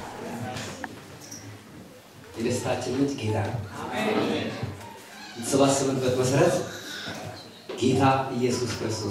የደስታችን ምንጭ ጌታ ነው አሜን ተሰባሰብንበት መሰረት ጌታ ኢየሱስ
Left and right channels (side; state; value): both; identical; correlation 1.00